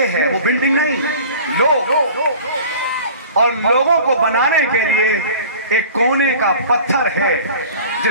है, वो बिल्डिंग नहीं, लोग। और लोगों को बनाने के लिए एक कोने का पत्थर है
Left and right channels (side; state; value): both; inverted; correlation -0.43